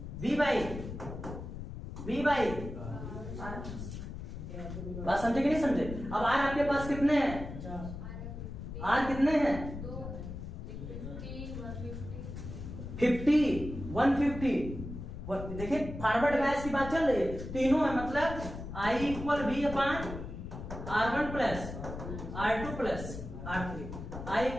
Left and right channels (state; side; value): noise; left; rumble, 8 dB below the sound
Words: वी बाई बात समझे कि नहीं समझे। अब आर आपके पास कितने हैं, आर कितने हैं, 50 150। देखिए फॉरवर्ड बैच की बात चल रही है, तीनों है, मतलब I equal V upon R1 plus R2 plus R3, I